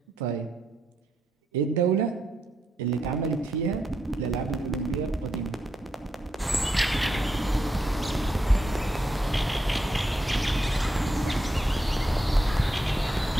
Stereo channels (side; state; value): both; normal; correlation 0.82